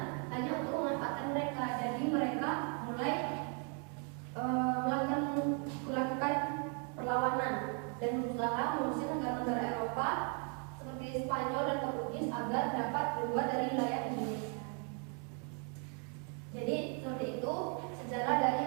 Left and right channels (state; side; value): quieter; left; 39.3 dB